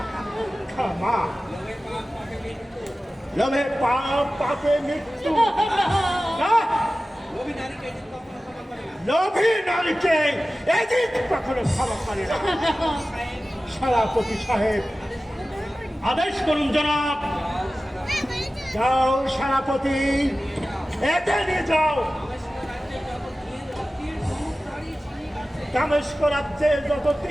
ক্ষমা। লোভে পাপ, পাপে মৃত্যু। না, লোভী নারীকে এদিক কখনো ক্ষমা করে না। সেনাপতি সাহেব, আদেশ করুন জনাব। যাও সেনাপতি, এতে নিয়ে যাও। দামেস্ক রাজ্যে যত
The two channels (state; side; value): normal; both; correlation 0.96